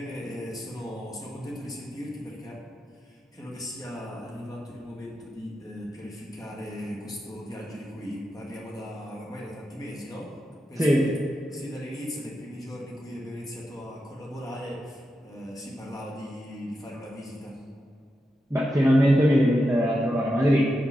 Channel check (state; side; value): normal; both; correlation 0.88